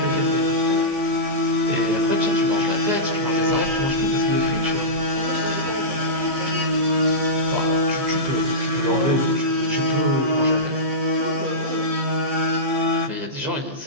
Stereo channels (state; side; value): late; left; 15 ms